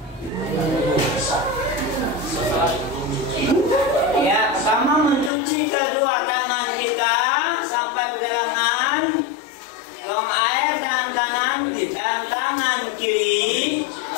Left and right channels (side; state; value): right; drops out; at 5.3 s